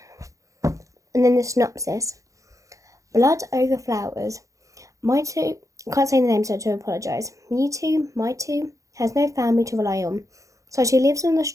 and then the synopsis. Blood over flowers. Maitu, I can't say the name, so to apologise. Maitu has no family to rely on, so she lives on the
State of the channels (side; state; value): left; late; 0.16 ms